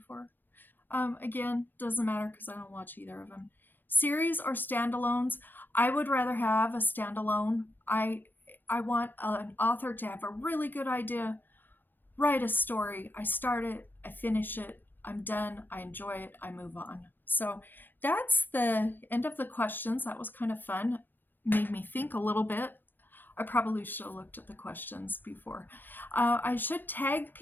Again, doesn't matter because I don't watch either of them. Series or standalones? I would rather have a standalone. I want an author to have a really good idea, write a story. I start it, I finish it, I'm done, I enjoy it, I move on. So that's the end of the questions. That was kind of fun. Made me think a little bit. I probably should have looked at the questions before. I should tag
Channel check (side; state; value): right; late; 0.092 ms